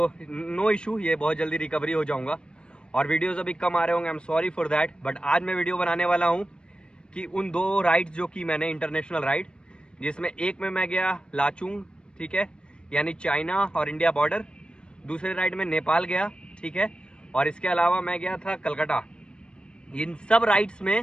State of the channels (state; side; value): late; right; 0.054 ms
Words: नो इशू, ये बहुत जल्दी रिकवरी हो जाऊँगा और वीडियोस अभी कम आ रहे होंगे, I am sorry for that. But आज मैं वीडियो बनाने वाला हूँ कि उन दो राइड्स जो कि मैंने इंटरनेशनल राइड, जिसमें एक में मैं गया लाचुंग, ठीक है, यानी चाइना और इंडिया बॉर्डर। दूसरे राइड में नेपाल गया, ठीक है, और इसके अलावा मैं गया था कलकत्ता। इन सब राइड्स